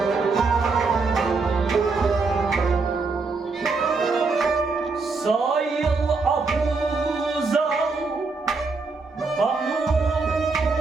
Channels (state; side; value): quieter; left; 4.2 dB